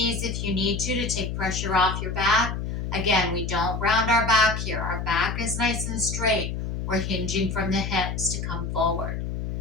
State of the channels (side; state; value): left; noise; hum, 4 dB below the sound